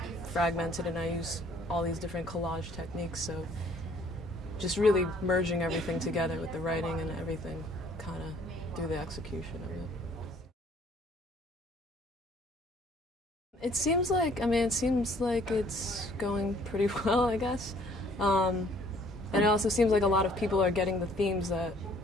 fragmented, and I use all these different collage techniques, so just really merging everything together with the writing and everything kind of through the execution of it. It seems like it's going pretty well, I guess. And it also seems like a lot of people are getting the themes that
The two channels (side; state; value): both; normal; correlation 0.59